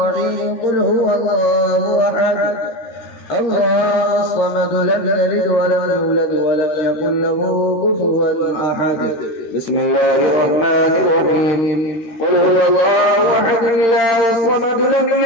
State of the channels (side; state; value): right; late; 13 ms